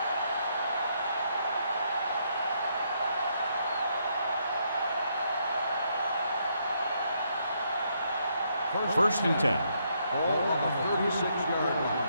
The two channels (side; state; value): both; inverted; correlation -0.74